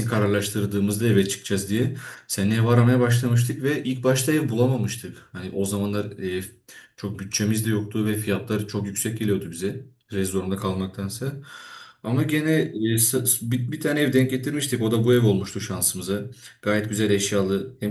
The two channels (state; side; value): identical; both; correlation 1.00